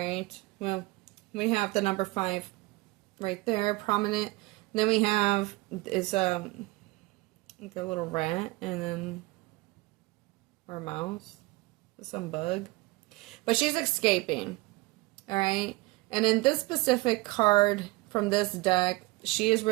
well, we have the number 5 right there, prominent. Then we have is like a little rat and then or mouse, some bug, but she's escaping. All right, and in this specific card from this deck, she is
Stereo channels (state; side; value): quieter; left; 22.5 dB